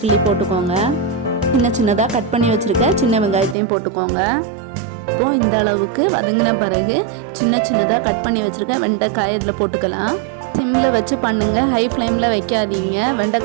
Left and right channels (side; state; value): left; drops out; at 3.6 s